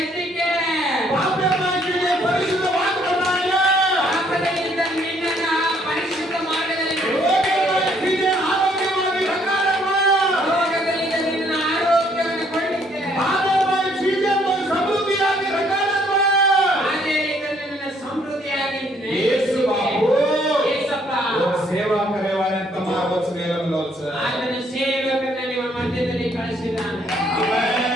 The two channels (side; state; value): both; normal; correlation 0.66